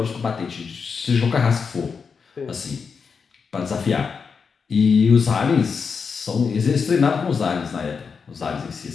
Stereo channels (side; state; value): right; quieter; 5.7 dB